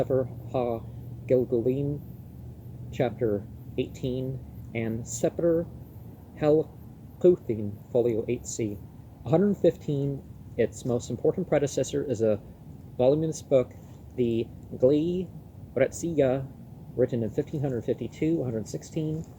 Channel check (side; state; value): both; identical; correlation 1.00